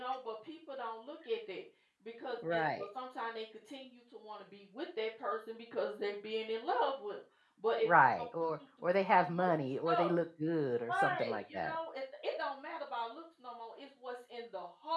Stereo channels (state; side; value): identical; both; correlation 1.00